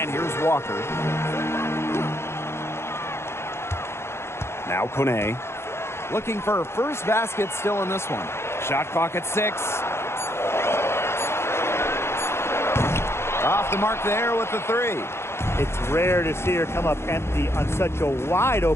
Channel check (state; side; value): late; right; 0.12 ms